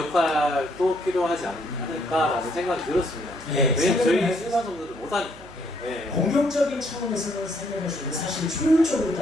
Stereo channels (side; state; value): right; noise; hum, 21 dB below the sound